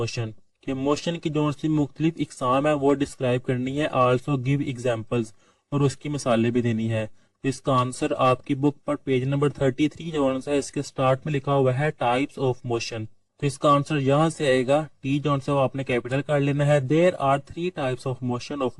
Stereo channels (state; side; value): identical; both; correlation 1.00